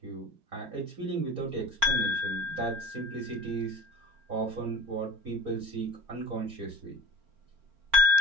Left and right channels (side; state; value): left; late; 4.4 ms